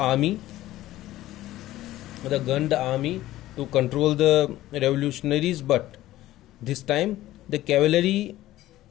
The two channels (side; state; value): right; quieter; 15.3 dB